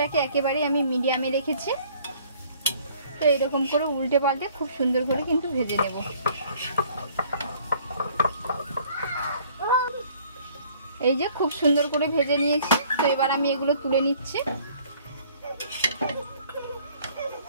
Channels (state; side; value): inverted; both; correlation -0.57